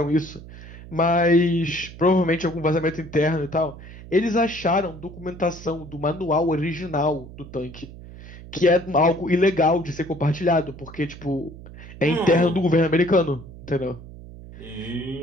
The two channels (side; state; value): right; noise; hum, 16 dB below the sound